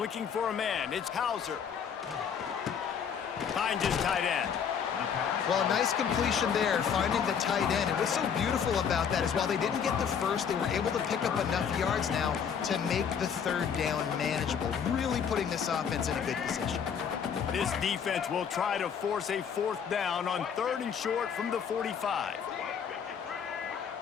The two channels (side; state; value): right; quieter; 7.4 dB